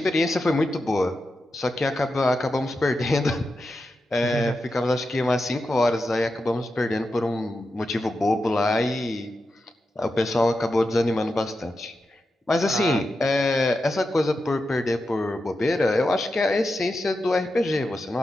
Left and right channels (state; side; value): normal; both; correlation 0.89